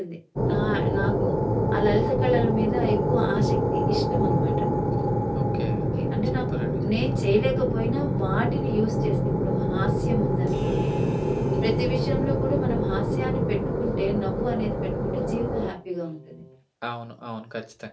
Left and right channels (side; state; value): both; identical; correlation 1.00